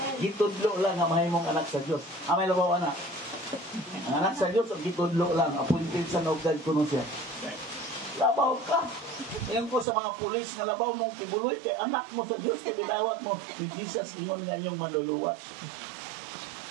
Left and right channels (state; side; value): drops out; left; at 9.9 s